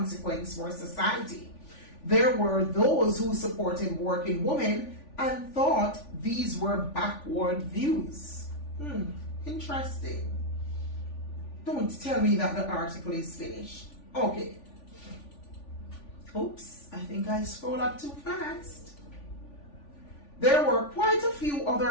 for society. There were those who supported working women and thought these were backward views. Interesting. Don't tell me that the article is finished. Okay. Oops, I think I scrolled up too fast. There were quite a few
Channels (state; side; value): late; right; 3.5 ms